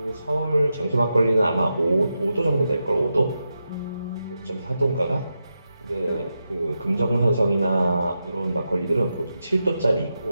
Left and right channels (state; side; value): inverted; both; correlation -0.88